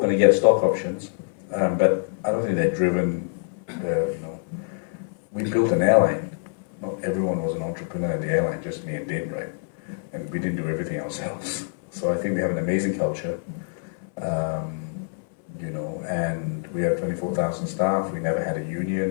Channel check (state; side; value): silent; right; 59 dB below the other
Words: to get stock options, but I don't think they're driven, you know, we built an airline. Not everyone was an entrepreneur in the airline, just me and Din, right? And we didn't do everything ourselves. So I think we have an amazing culture, you know, and we have 24,000 staff. We never had a